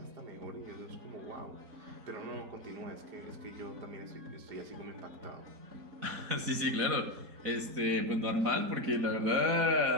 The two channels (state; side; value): late; left; 4.0 ms